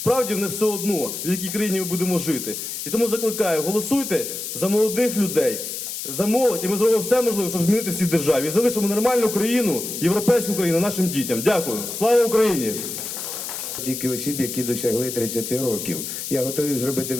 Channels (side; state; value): left; noise; hiss, 6 dB below the sound